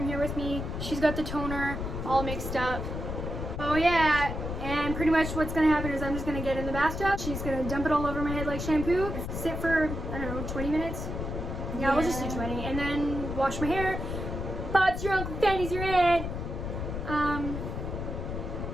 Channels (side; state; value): left; noise; rumble, 5 dB below the sound